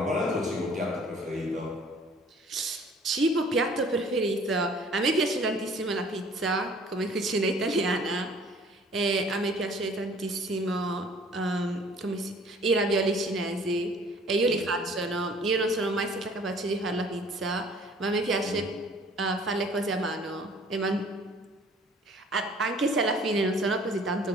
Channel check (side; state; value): both; normal; correlation 0.53